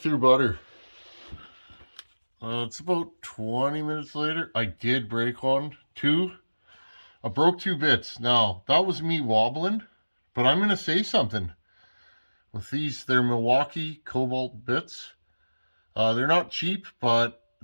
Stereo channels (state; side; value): inverted; both; correlation -1.00